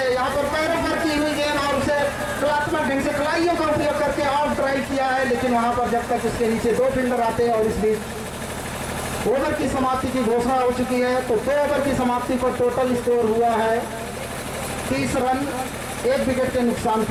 यहाँ पर पैरों पर की हुई गेंद और उसे कलात्मक ढंग से कलाइयों का उपयोग करके आउट ड्राइव किया है, लेकिन वहाँ पर जब तक उसके नीचे 2 फील्डर आते हैं और इस बीच ओवर की समाप्ति की घोषणा हो चुकी है। तो 2 ओवर की समाप्ति पर टोटल स्कोर हुआ है 30 रन 1 विकेट के नुकसान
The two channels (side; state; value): both; identical; correlation 1.00